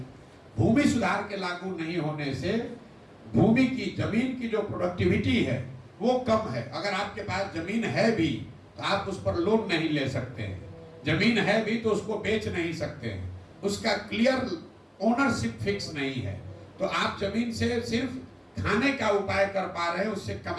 भूमि सुधार के लागू नहीं होने से भूमि की, जमीन की जो प्रोडक्टिविटी है वो कम है। अगर आपके पास जमीन है भी तो आप उस पर लोन नहीं ले सकते हैं, जमीन है भी तो उसको बेच नहीं सकते हैं, उसका क्लियर ओनरशिप फिक्स नहीं है। तो आप जमीन से सिर्फ खाने का उपाय कर पा रहे हैं, उससे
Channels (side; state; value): both; identical; correlation 1.00